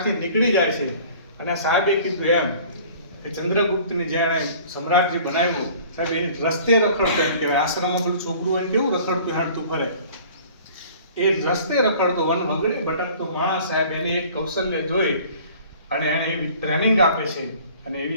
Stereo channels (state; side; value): inverted; both; correlation -0.49